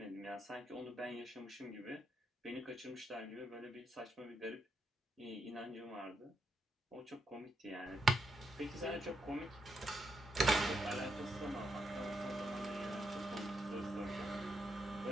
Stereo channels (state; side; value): normal; both; correlation 0.81